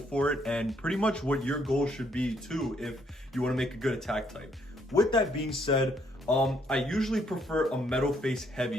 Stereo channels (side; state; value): both; normal; correlation 0.70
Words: it, and pretty much what your goal should be too if you want to make a good attack type. With that being said, I usually prefer a metal face